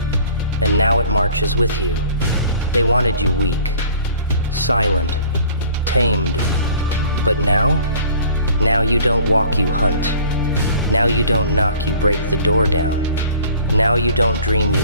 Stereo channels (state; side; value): inverted; both; correlation -0.50